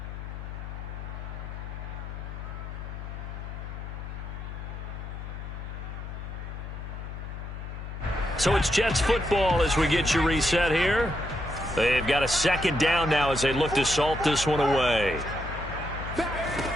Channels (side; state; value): left; noise; hum, 8 dB below the sound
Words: So it's Jets football as we get you reset here. They've got a second down now as they look to salt this one away.